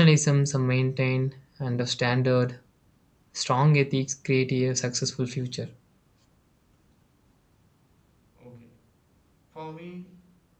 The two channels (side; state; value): both; identical; correlation 1.00